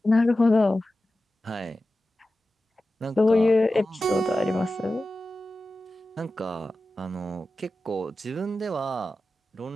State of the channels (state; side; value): normal; both; correlation 0.94